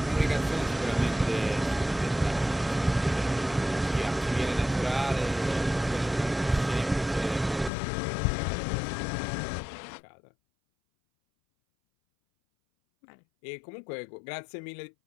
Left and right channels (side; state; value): right; drops out; at 7.7 s